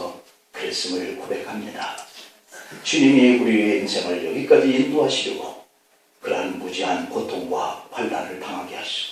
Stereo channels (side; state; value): both; identical; correlation 1.00